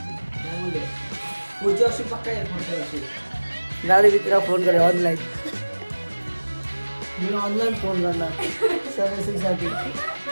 पुढच्या वर्षी पक्का येईल. पुढच्या वर्षी गाडी मित्रा फोन करे ऑनलाईन. मी ऑनलाईन फोन करणार सर्व्हिसिंगसाठी.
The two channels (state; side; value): inverted; both; correlation -1.00